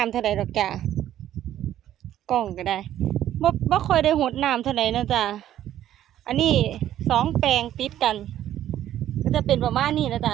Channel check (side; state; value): left; quieter; 12.0 dB